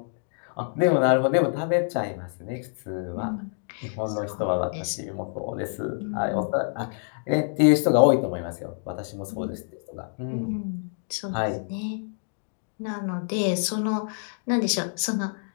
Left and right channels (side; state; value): right; silent; digital silence